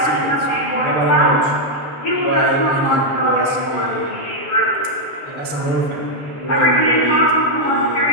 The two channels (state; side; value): late; right; 6.7 ms